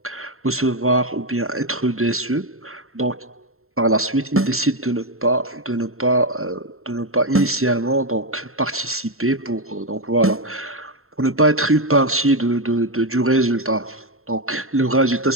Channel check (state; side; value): late; left; 0.62 ms